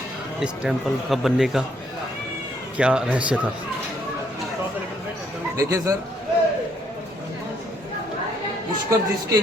इस टेंपल का बनने का क्या रहस्य था। देखिए सर, पुष्कर जिसके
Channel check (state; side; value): normal; both; correlation 0.70